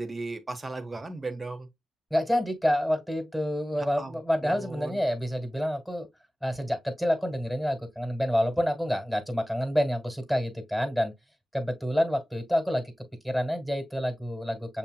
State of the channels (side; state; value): both; normal; correlation 0.97